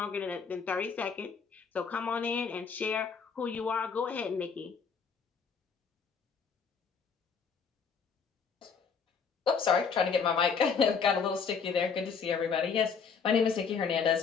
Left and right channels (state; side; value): quieter; right; 6.0 dB